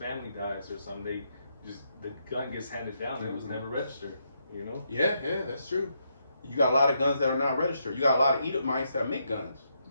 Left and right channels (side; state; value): both; inverted; correlation -0.79